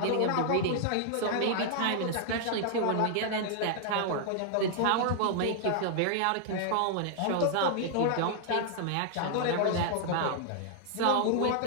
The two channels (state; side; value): different; both; correlation -0.01